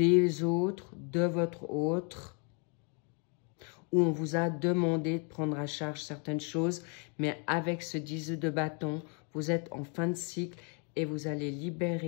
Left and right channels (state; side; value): quieter; right; 37.5 dB